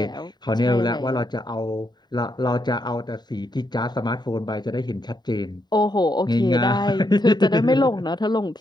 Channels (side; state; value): right; late; 0.20 ms